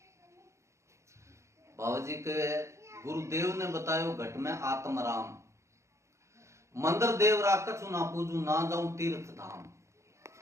बाबा जी के गुरुदेव ने बतायो घट में आत्म राम, मंदिर देवरा कछु ना पूजू, ना जाऊं तीर्थ धाम।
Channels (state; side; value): late; left; 0.14 ms